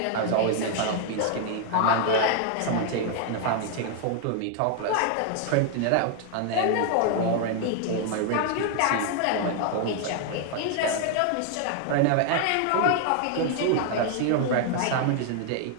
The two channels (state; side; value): different; both; correlation 0.00